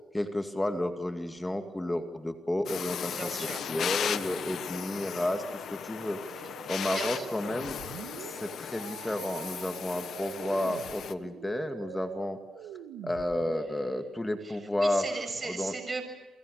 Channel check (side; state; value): both; normal; correlation 0.90